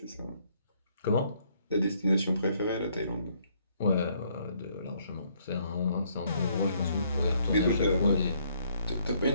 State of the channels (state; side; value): inverted; both; correlation -0.68